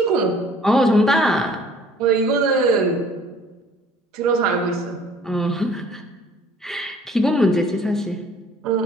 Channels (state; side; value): normal; both; correlation 0.54